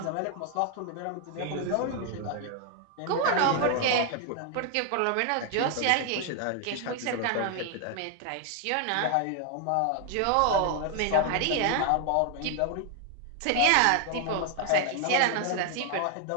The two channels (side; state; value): both; different; correlation 0.00